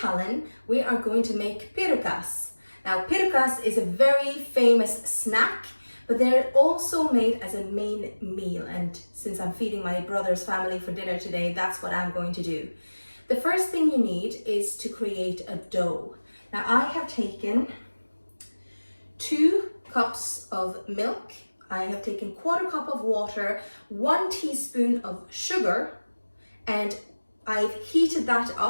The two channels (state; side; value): inverted; both; correlation -1.00